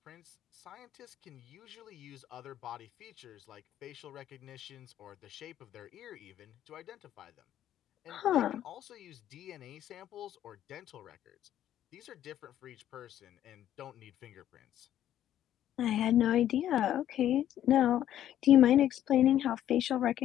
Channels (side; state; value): right; quieter; 11.6 dB